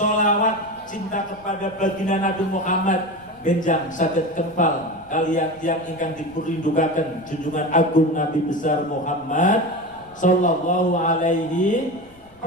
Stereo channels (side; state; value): left; noise; rumble, 27 dB below the sound